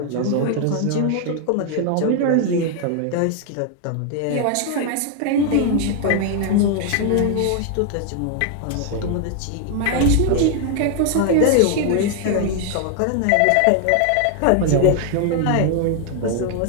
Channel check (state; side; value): different; both; correlation 0.00